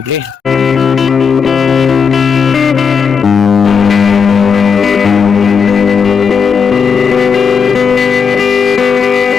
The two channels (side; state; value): right; quieter; 6.2 dB